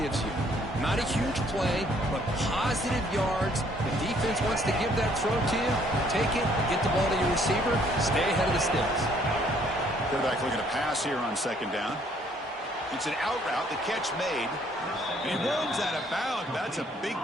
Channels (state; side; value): normal; both; correlation 0.63